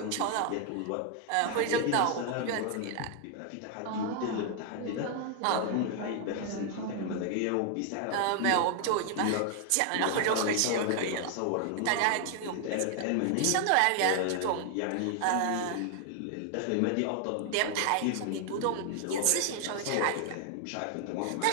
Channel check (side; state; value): both; different; correlation 0.00